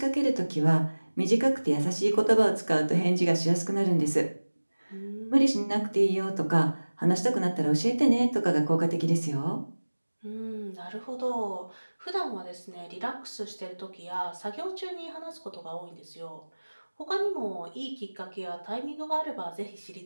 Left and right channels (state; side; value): inverted; both; correlation -1.00